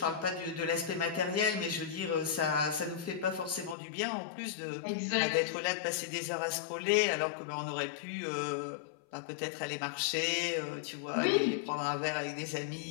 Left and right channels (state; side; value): drops out; right; at 3.8 s